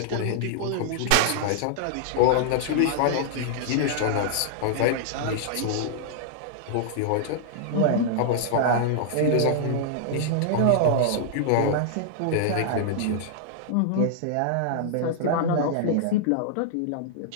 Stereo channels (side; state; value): both; different; correlation -0.01